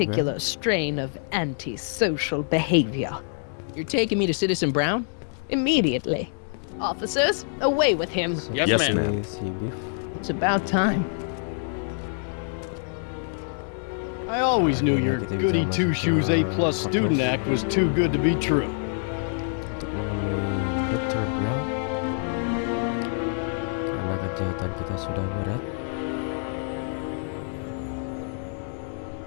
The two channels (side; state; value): right; silent; 61 dB below the other